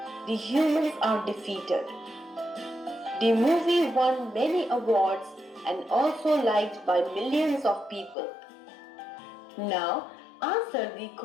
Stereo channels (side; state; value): right; drops out; at 8.2 s